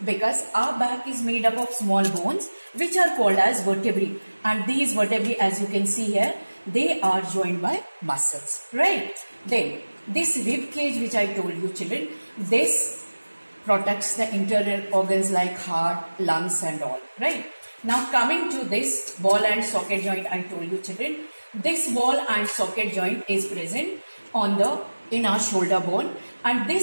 our back is made up of small bones which are called as vertebrae, and these vertebrae, as you can see here, they are joined by muscles, right? Then this rib cage which I told you children, this protects the internal organs like heart, lungs and all, right? Now coming to this ball and socket joint, I told you children, this ball and socket joint is present in our shoulder bone, and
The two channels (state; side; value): inverted; both; correlation -1.00